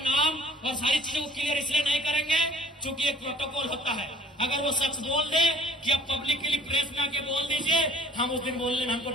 और सारी चीजों को क्लियर इसलिए नहीं करेंगे क्योंकि एक प्रोटोकॉल होता है। अगर वो शख्स बोल दे कि अब पब्लिकली प्रेस में आके बोल दीजिए, हम उस दिन बोलने में हमको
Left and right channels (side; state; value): both; normal; correlation 0.53